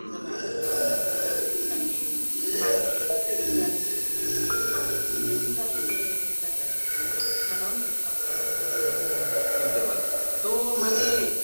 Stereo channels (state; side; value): inverted; both; correlation -1.00